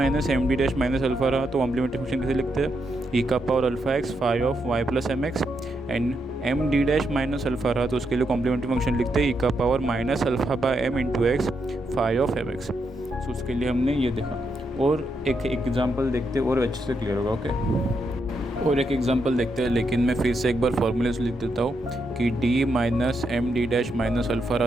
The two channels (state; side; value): normal; both; correlation 0.81